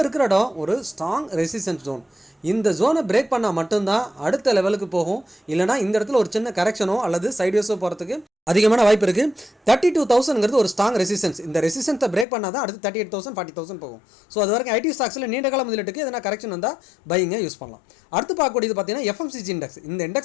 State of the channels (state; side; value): drops out; right; at 12.2 s